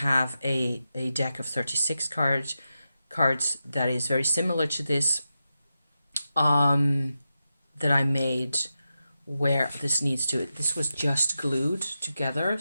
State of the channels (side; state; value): both; inverted; correlation -0.89